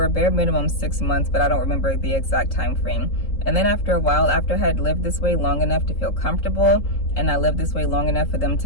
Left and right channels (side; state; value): right; late; 3.8 ms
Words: a bare minimum 6 months, but I don't remember the exact time frame. And then after a while, after I had lived this way long enough to feel comfortable, and I lived this way long enough for them